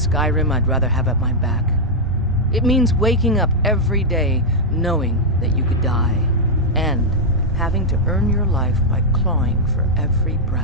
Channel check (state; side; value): normal; both; correlation -0.04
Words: I'd rather have at my back. It means waking up every day knowing that you could die, and having to earn your life by clawing for every